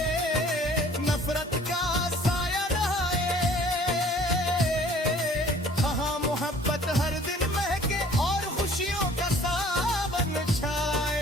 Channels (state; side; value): normal; both; correlation 0.53